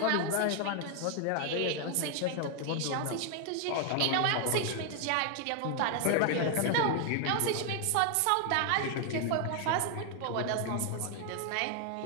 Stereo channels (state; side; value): different; both; correlation 0.00